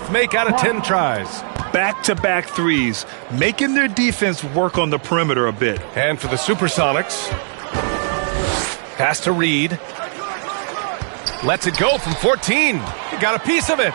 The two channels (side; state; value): left; silent; digital silence